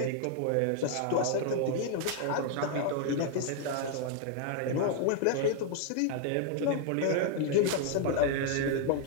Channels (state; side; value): different; both; correlation 0.00